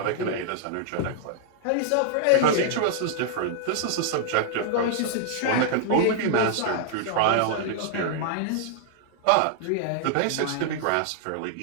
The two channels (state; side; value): different; both; correlation -0.01